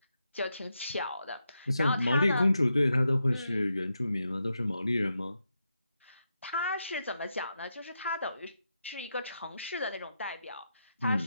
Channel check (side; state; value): both; inverted; correlation -0.85